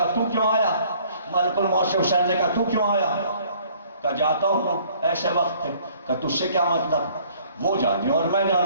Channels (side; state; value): both; inverted; correlation -0.58